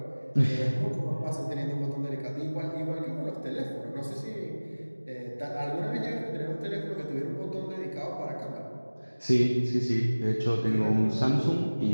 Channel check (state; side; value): inverted; both; correlation -1.00